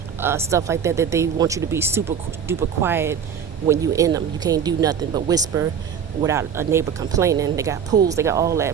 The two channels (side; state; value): left; quieter; 7.5 dB